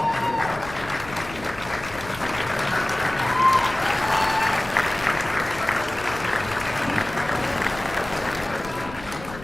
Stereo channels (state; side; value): noise; left; rumble, 15 dB below the sound